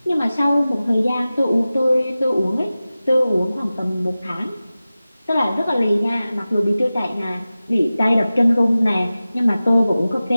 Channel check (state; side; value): inverted; both; correlation -0.96